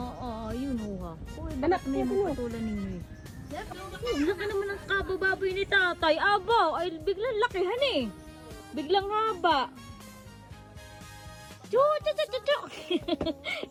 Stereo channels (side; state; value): both; identical; correlation 1.00